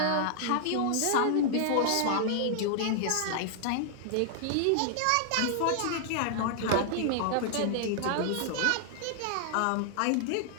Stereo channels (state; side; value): different; both; correlation -0.01